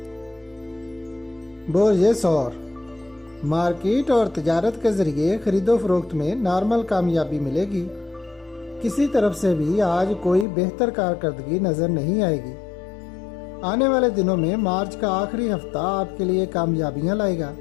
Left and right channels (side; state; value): right; drops out; at 10.5 s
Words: برج ثور، مارکیٹ اور تجارت کے ذریعے خرید و فروخت میں نارمل کامیابی ملے گی۔ کسی طرف سے بھی آج کوئی بہتر کارکردگی نظر نہیں آئے گی۔ آنے والے دنوں میں مارچ کا آخری ہفتہ آپ کے لیے کامیابیاں لائے گا۔